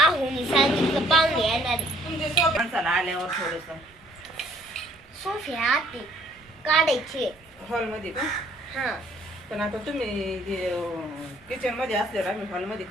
सांगितलं पाहुणे येणार आहे. तुमचे सोबत माणसाला आल्यावर थोडस सोफे आते काढायचे. हॉल मध्ये का? हा पण आता तुम्ही किचन मध्ये असल्यावर आम्ही हॉल मध्ये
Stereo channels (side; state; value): right; noise; rumble, 29 dB below the sound